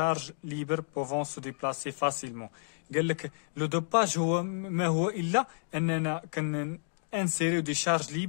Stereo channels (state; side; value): silent; right; digital silence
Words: ليبر بوفون سو ديبلاسي فاسيلمون. قال لك لو دوباج هو ما هو الا اننا انسيريو دي شارج